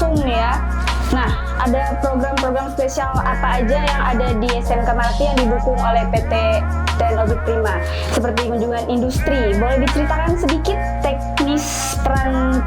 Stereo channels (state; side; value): identical; both; correlation 1.00